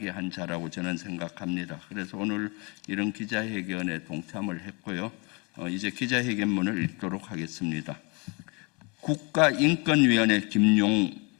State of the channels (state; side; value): quieter; right; 29.8 dB